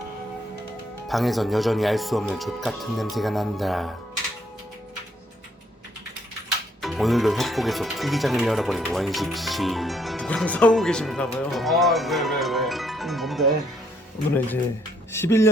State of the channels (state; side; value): normal; both; correlation 0.69